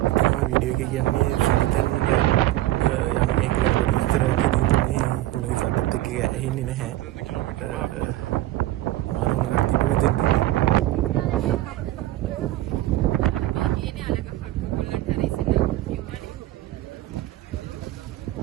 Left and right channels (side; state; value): left; quieter; 15.8 dB